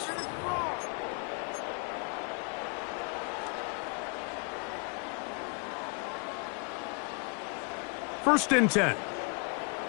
First and 10.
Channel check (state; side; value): quieter; right; 35.5 dB